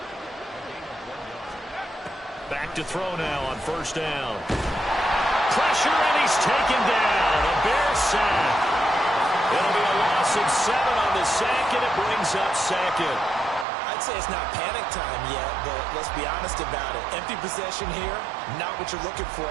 Back to throw now on first down. Pressure, and he's taken down. A Bears sack. It'll be a loss of 7 on the sack, and it brings up second. I I'd say it's not panic time yet, but let's be honest about it. Empty possession here, not what you're looking for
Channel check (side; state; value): left; drops out; at 13.7 s